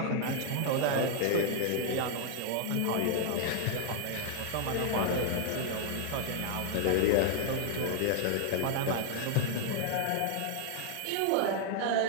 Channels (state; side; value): different; both; correlation 0.00